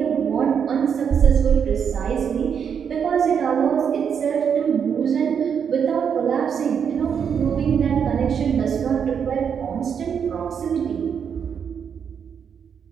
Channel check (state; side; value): quieter; left; 7.4 dB